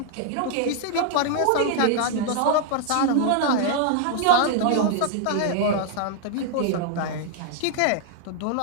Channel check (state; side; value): different; both; correlation 0.00